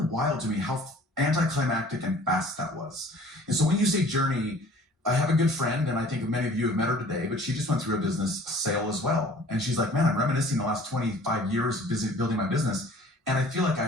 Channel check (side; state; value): both; normal; correlation 0.50